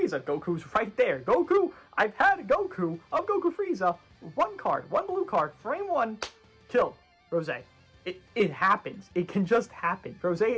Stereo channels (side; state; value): both; identical; correlation 1.00